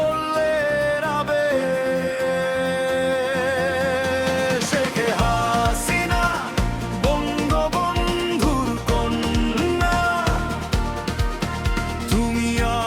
আবেশ। শেখ হাসিনা বঙ্গবন্ধুর কন্যা, তুমি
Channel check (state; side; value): identical; both; correlation 1.00